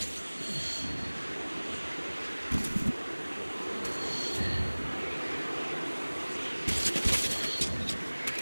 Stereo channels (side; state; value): both; inverted; correlation -1.00